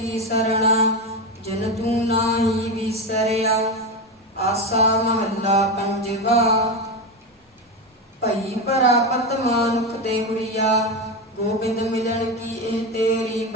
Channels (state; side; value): normal; both; correlation 0.16